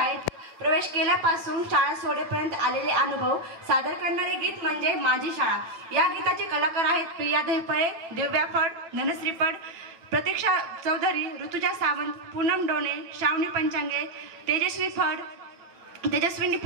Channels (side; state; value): left; late; 9.1 ms